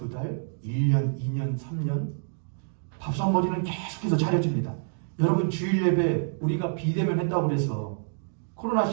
달, 1년, 2년, 3년 밥상머리는 계속해서 차려줍니다. 여러분 주일 예배 우리가 비대면 했다고 그래서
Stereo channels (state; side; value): silent; left; digital silence